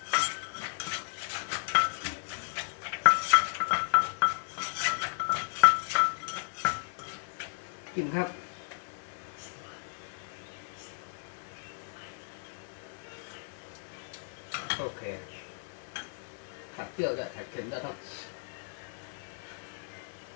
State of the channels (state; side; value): silent; right; 55 dB below the other